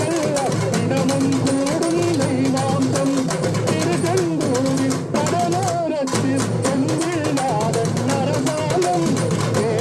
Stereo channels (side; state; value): both; identical; correlation 1.00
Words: தினமும் கூடும் தெய்வாம்சம். திருச்செந்தூரில் கடலோரத்தில் செந்தில்நாதன் அரசாங்கம்